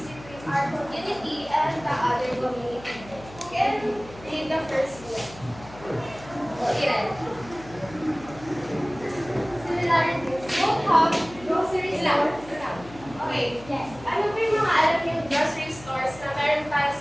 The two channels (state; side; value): noise; left; hum, 18 dB below the sound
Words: between our community and the other community. Who can read the first one? Iran. Similarities. Both have grocery stores. Okay. Yes. Ano ba yung mga alam yung grocery stores na meron tayo